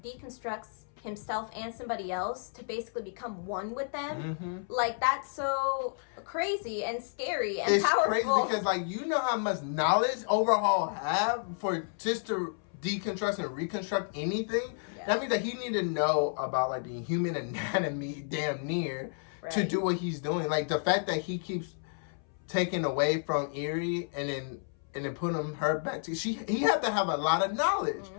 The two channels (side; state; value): right; silent; 57 dB below the other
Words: himself and somebody else to basically become one with them. Like, that's so crazy and scary and powerful. It's crazy because, like, how much knowledge Overhaul have for just to deconstruct and reconstruct anything. That means that he need to know about, like, the human anatomy damn near to do what he's doing. Like, the fact that he keeps taking away from Eerie and then putting her back to he had to have a lot of knowledge.